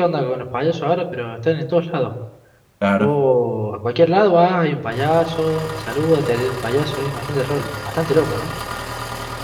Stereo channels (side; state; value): both; identical; correlation 1.00